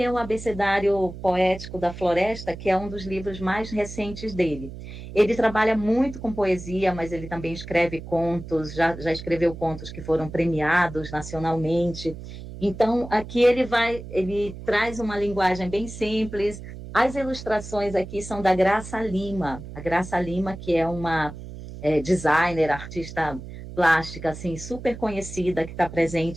é o Abecedário Poético da Floresta, que é um dos livros mais recentes dele. Ele trabalha muito com poesia, mas ele também escreve contos, já escreveu contos que foram premiados nacionalmente. Então, aqui ele traz uma linguagem bem simples. As ilustrações aqui são da Graça Lima. A Graça Lima, que é uma designer, artista plástica, assim, super conhecida, que está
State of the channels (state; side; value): noise; right; hum, 12 dB below the sound